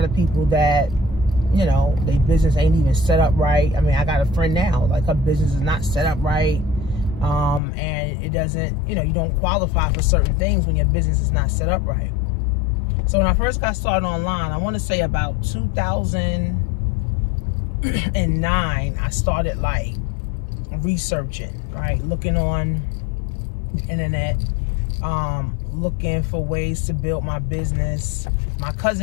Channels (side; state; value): right; drops out; at 7.6 s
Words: of people that, their business ain't even set up right. I mean, I got a friend now, like her business is not set up right. And it doesn't, you don't qualify for certain things when your business is not set up right. So when I first got started online, I want to say about 2009, I started like researching, right? Looking on the internet, looking for ways to build my business. My